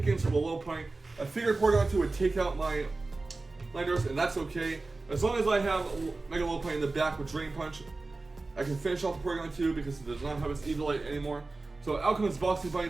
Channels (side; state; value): left; quieter; 3.4 dB